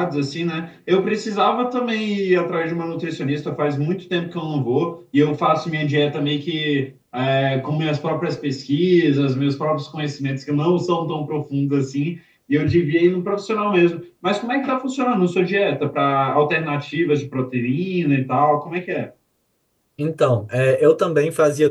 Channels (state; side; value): identical; both; correlation 1.00